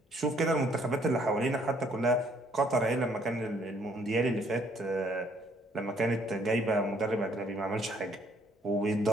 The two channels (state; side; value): normal; both; correlation 0.64